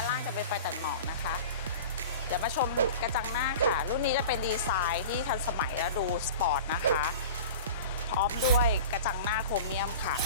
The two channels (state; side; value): inverted; both; correlation -0.37